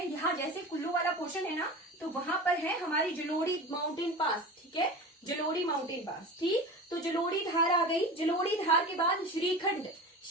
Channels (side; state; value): both; normal; correlation 0.31